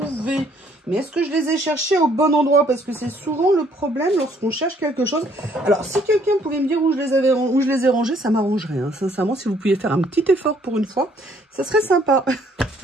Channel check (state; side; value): normal; both; correlation 0.64